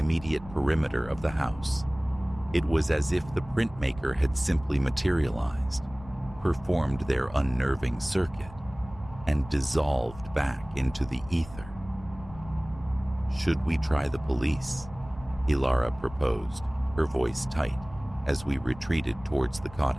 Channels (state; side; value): noise; left; rumble, 18 dB below the sound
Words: perimeter of the house. It was as if the printmaker had simply materialized, performed their unnerving circuit, and dissolved back into the ether. "Should we try the police?" Ilara proposed, her voice tight, as we retreated towards the